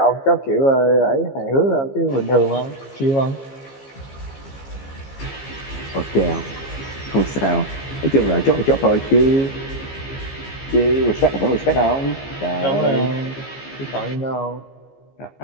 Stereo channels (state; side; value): late; right; 15 ms